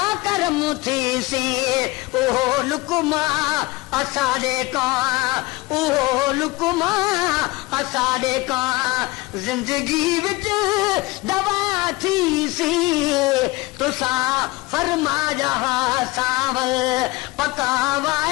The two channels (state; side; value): quieter; right; 21.2 dB